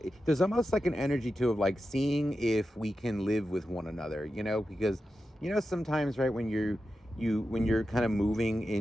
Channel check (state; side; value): normal; both; correlation 0.91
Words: There's almost like an energy too of like seeing if we can live with one another, because sometimes, right, when you're kind of moving